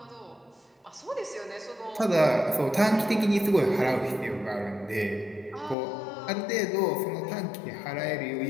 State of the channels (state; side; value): drops out; right; at 5.8 s